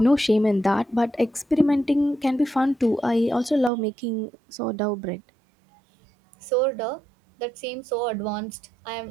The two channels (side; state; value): left; drops out; at 3.7 s